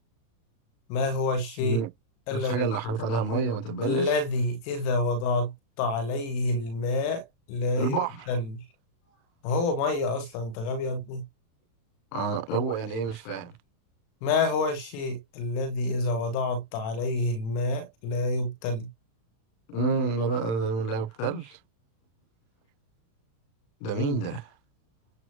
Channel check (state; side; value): late; right; 36 ms